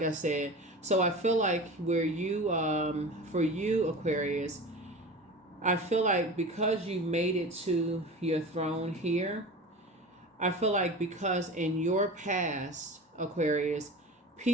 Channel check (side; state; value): both; normal; correlation 0.34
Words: I said, so I feel like where you, for you, Aquarius, I feel like because you made it to your throne here, I feel like because in your past, Aquarius,